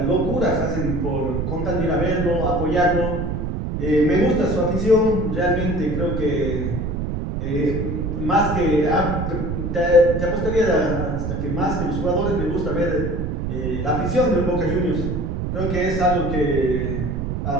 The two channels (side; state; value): right; noise; rumble, 2 dB below the sound